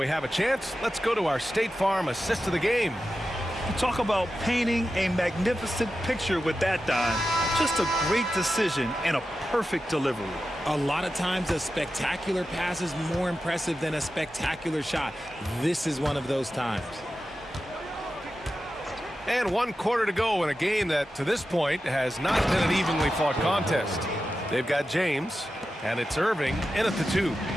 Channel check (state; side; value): normal; both; correlation 0.92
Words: have a chance, let's go to our State Farm assist of the game. You talk about painting a magnificent picture with that dime. Just a great decision and a perfect delivery. A lot of times a spectacular pass is more impressive than a spectacular shot. This is one of those times. And 1 quarter to go in a game that, to this point, has not been an evenly fought contest. They've got James, and it's Irving in at the 2.